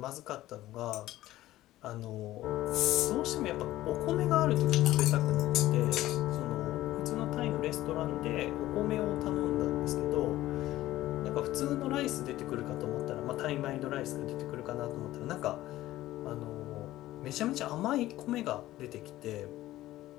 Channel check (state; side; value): quieter; right; 15.5 dB